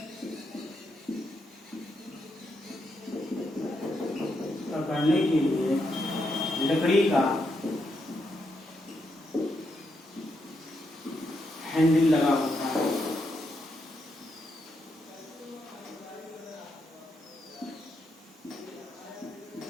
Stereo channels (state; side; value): normal; both; correlation 0.81